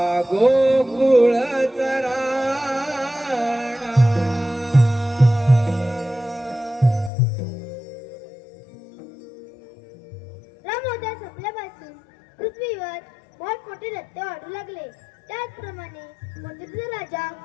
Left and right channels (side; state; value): right; drops out; at 7.1 s